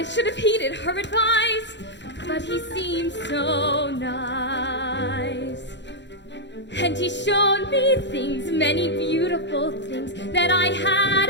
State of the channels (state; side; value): late; right; 0.52 ms